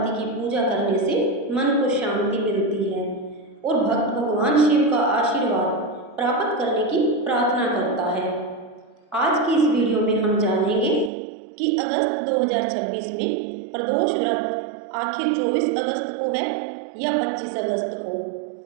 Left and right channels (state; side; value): drops out; left; at 11.1 s